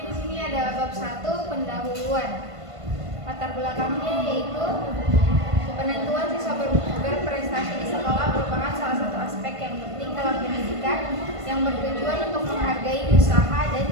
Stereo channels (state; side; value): late; left; 1.5 ms